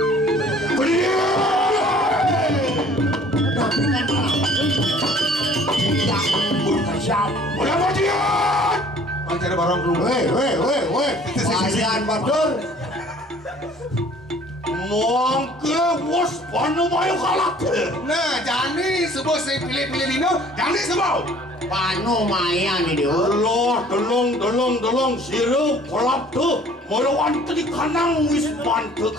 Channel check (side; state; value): both; normal; correlation 0.53